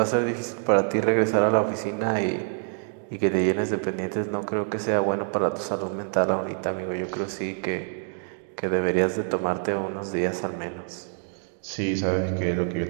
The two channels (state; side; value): silent; left; 61 dB below the other